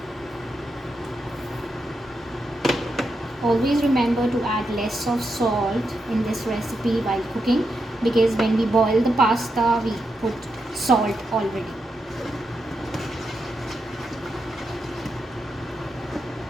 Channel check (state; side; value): normal; both; correlation 0.85